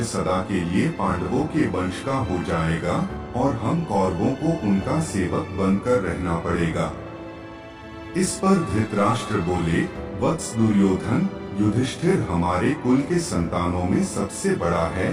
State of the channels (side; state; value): both; identical; correlation 1.00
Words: सदा के लिए पांडवों के वंश का हो जाएगा और हम कौरवों को उनका सेवक बनकर रहना पड़ेगा। इस पर धृतराष्ट्र बोले, वत्स दुर्योधन, युधिष्ठिर हमारे कुल के संतानों में सबसे बड़ा